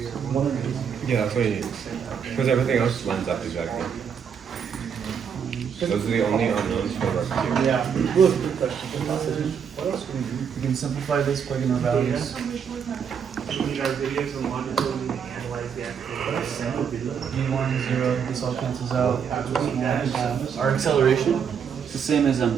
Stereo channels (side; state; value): left; quieter; 7.2 dB